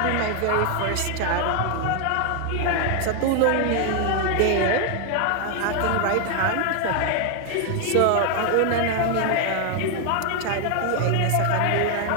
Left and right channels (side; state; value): both; different; correlation 0.00